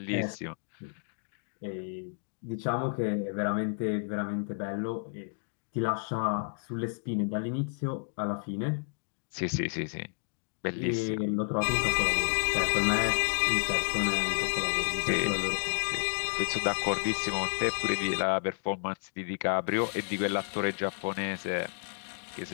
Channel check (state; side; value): silent; right; digital silence